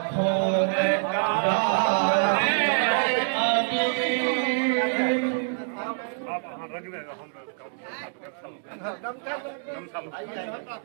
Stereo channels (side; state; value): left; silent; digital silence